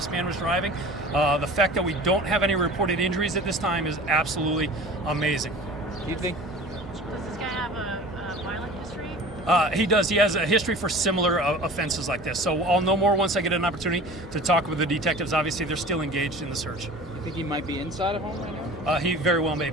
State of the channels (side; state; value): both; normal; correlation 0.40